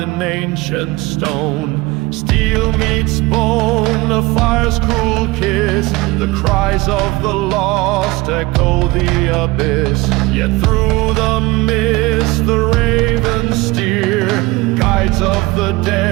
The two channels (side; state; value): left; quieter; 21.9 dB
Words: ancient stone. Steel meets bone, the fire's cruel kiss, the cries of the lost echo the abyss. Yet through the mist the ravens steer, guides of the